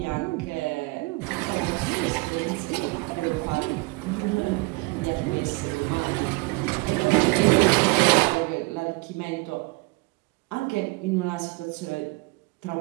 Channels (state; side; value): quieter; left; 26.0 dB